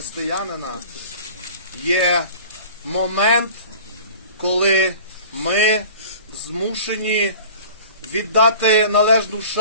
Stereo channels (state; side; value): inverted; both; correlation -0.44